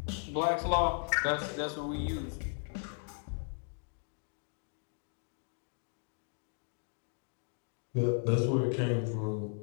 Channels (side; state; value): right; silent; 54 dB below the other